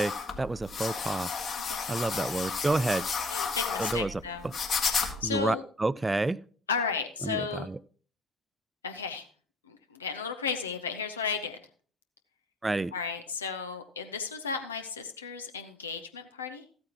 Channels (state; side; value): normal; both; correlation 0.52